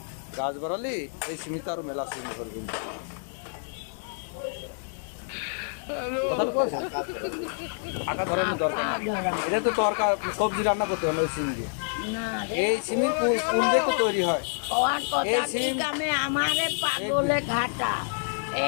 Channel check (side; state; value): right; silent; digital silence